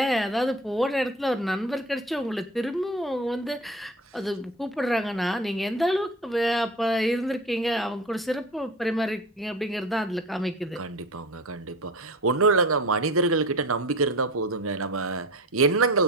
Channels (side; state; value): both; normal; correlation 0.34